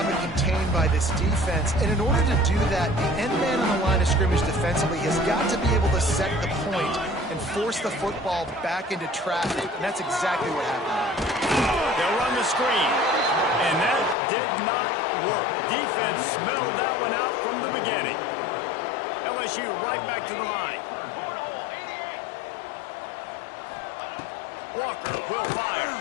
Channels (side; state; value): right; drops out; at 14.2 s